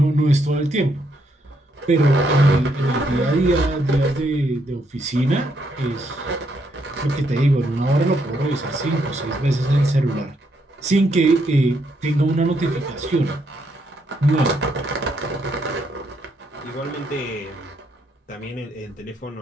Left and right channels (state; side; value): normal; both; correlation 0.75